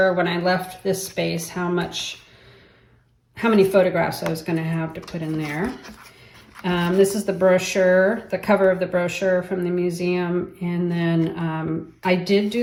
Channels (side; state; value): both; identical; correlation 1.00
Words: when I left this space how many photographs I was going to have to put in there. This is the brochure, the cover of the brochure from the museum, and then I did